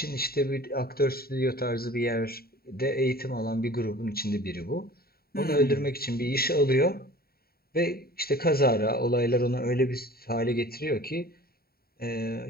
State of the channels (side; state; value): right; late; 0.44 ms